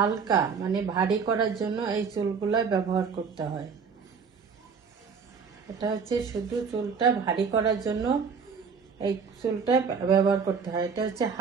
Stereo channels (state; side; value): quieter; left; 5.8 dB